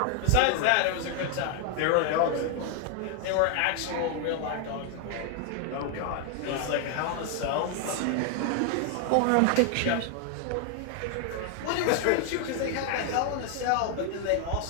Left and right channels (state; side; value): different; both; correlation 0.00